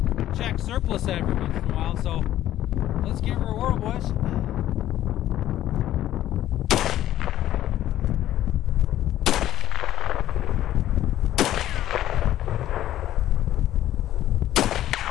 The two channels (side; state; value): right; quieter; 13.0 dB